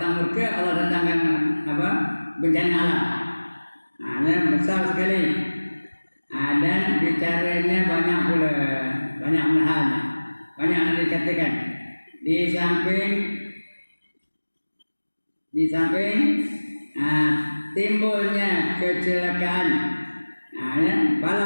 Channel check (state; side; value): inverted; both; correlation -1.00